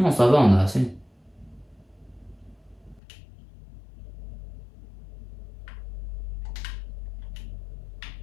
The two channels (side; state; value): right; drops out; at 3.0 s